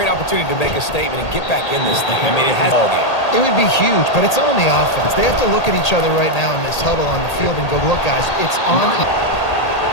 to make a statement and get back in this thing. I mean, it has all game. It would be huge, but it's on the offense. They have to look at each other right now in this huddle on the field and go, look, guys, it's on.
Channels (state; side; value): late; right; 1.8 ms